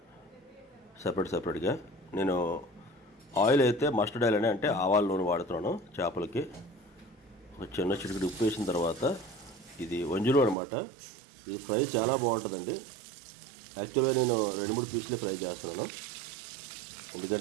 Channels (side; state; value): left; drops out; at 10.6 s